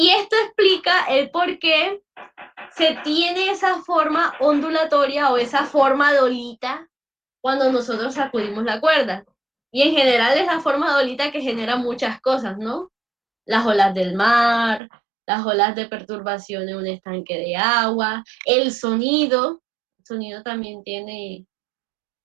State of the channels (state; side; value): drops out; left; at 14.8 s